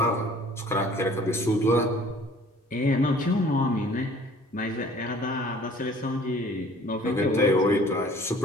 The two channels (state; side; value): normal; both; correlation 0.52